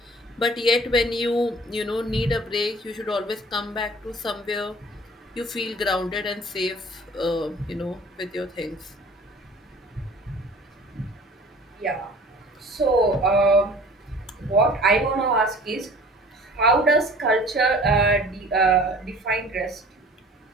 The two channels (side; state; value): both; normal; correlation 0.47